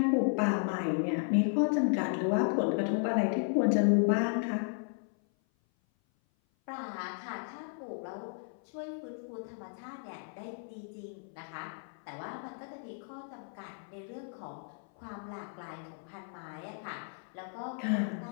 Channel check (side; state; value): right; silent; 55 dB below the other